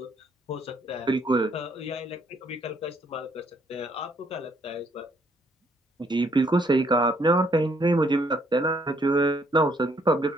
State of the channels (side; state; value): both; normal; correlation 0.68